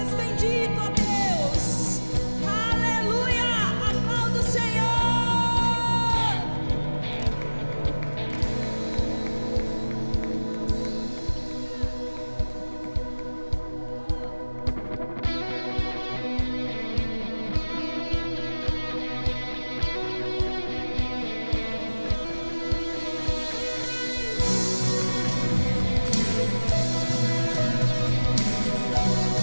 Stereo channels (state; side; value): inverted; both; correlation -1.00